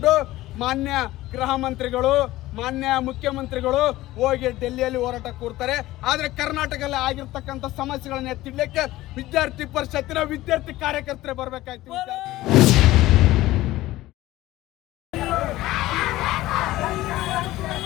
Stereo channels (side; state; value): right; quieter; 16.8 dB